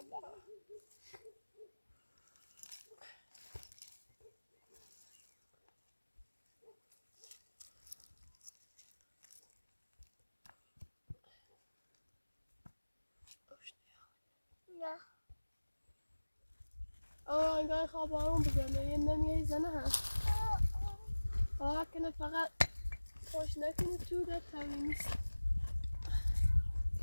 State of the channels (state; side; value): inverted; both; correlation -1.00